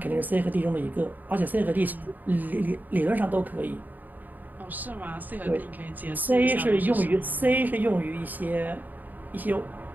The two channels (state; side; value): late; left; 0.085 ms